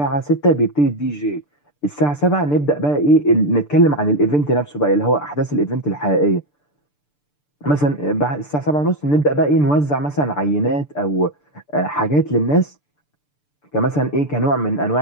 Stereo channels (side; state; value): right; late; 6.8 ms